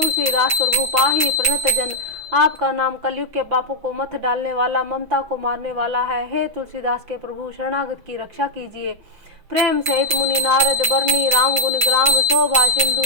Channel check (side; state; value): left; late; 5.9 ms